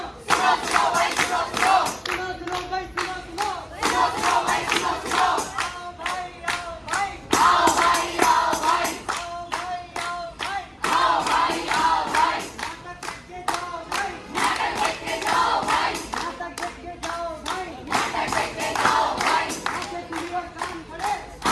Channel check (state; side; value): identical; both; correlation 1.00